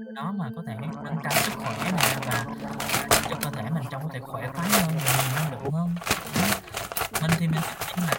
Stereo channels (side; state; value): both; identical; correlation 1.00